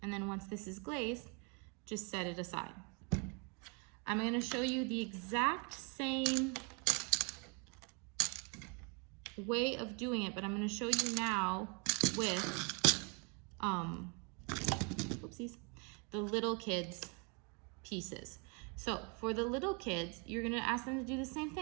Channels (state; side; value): quieter; left; 33.6 dB